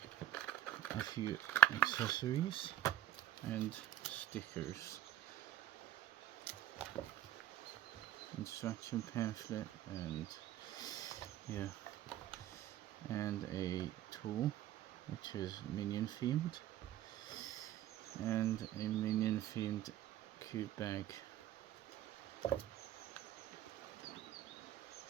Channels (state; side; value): quieter; left; 12.5 dB